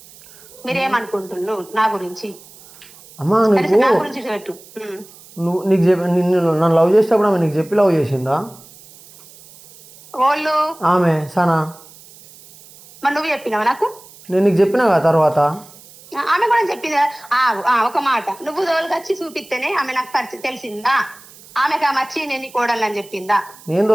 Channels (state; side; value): noise; right; hiss, 22 dB below the sound